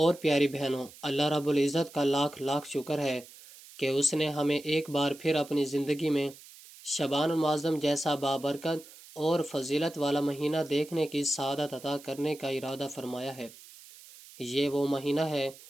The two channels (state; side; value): noise; right; hiss, 20 dB below the sound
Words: پیاری بہنوں، اللہ رب العزت کا لاکھ لاکھ شکر ہے کہ اس نے ہمیں ایک بار پھر اپنی زندگی میں شعبان المعظم جیسا بابرکت اور فضیلت والا مہینہ دیکھنے کی سعادت عطا کرنے کا ارادہ فرمایا ہے۔ یہ وہ مہینہ ہے